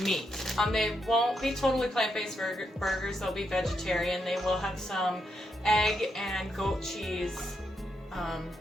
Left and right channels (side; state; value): both; normal; correlation 0.81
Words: meat. They won't be totally plant-based burgers, they'll be vegetarian. They will have some egg and goat cheese on